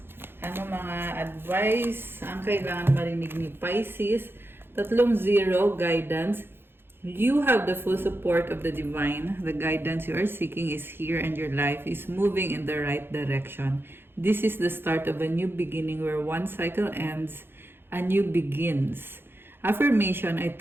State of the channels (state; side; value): late; left; 0.10 ms